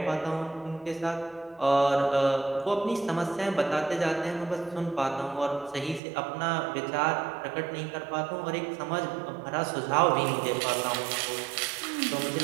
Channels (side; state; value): left; drops out; at 6.0 s